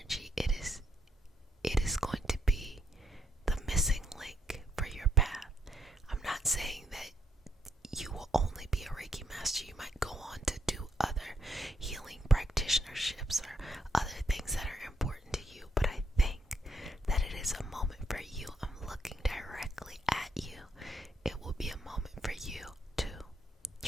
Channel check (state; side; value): normal; both; correlation 0.76